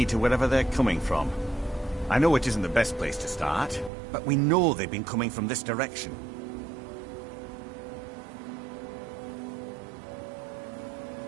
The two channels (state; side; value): drops out; left; at 3.9 s